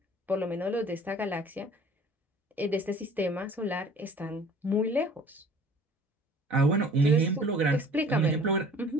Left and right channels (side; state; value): both; normal; correlation 0.49